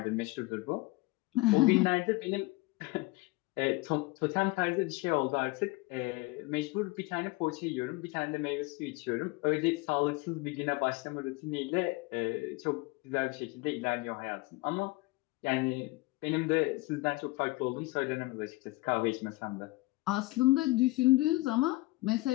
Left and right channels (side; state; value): right; quieter; 21.8 dB